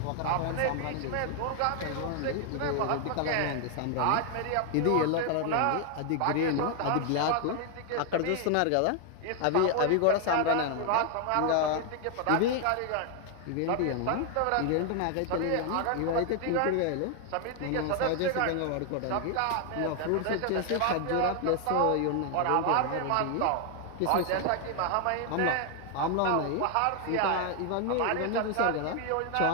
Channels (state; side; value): different; both; correlation 0.00